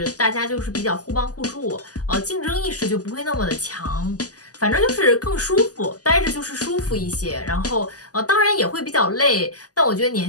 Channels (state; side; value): late; right; 0.67 ms